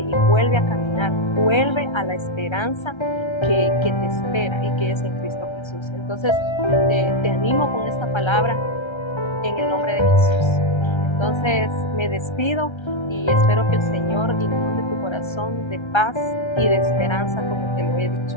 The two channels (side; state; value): right; late; 1.3 ms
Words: vuelve a caminar, vuelve a la esperanza que te espera y que es en Cristo Jesús. Entonces te animo con esta palabra en el nombre de Jesús. Entonces me despido y espero que el Señor inunde tu corazón de paz y de esperanza como te lo he dicho.